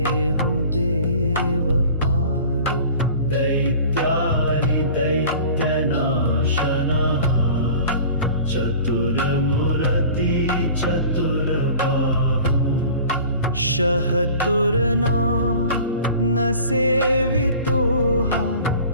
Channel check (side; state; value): both; inverted; correlation -0.43